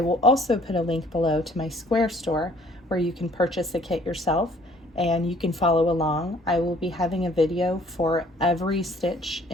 will also put a link below to my Square store where you can purchase the kit yourself and you can follow along. I will be having a video for every stitch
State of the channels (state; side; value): normal; both; correlation 0.58